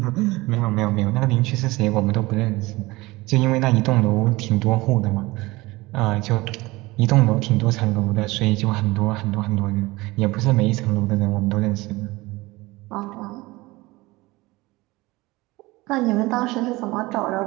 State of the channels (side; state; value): left; quieter; 21.1 dB